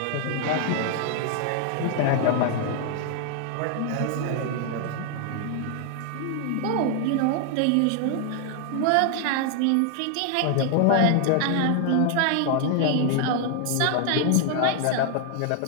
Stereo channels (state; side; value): different; both; correlation 0.00